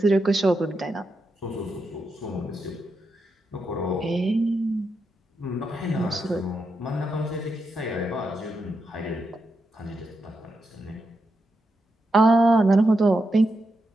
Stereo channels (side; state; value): both; normal; correlation 0.85